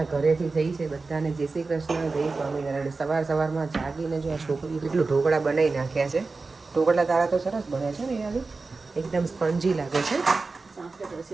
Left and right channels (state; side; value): quieter; left; 3.9 dB